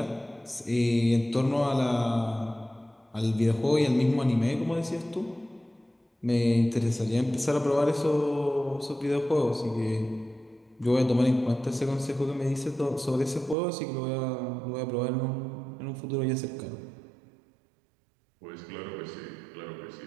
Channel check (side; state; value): left; drops out; at 13.6 s